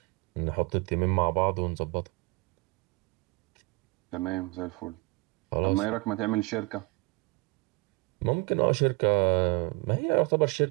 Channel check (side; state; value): left; quieter; 25.4 dB